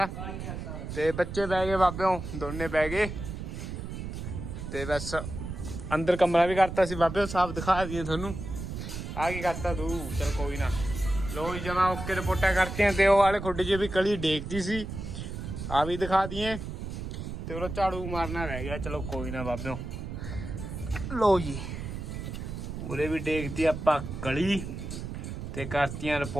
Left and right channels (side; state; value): right; noise; rumble, 7 dB below the sound